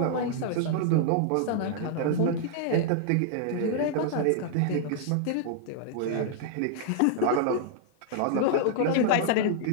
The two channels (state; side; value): different; both; correlation -0.01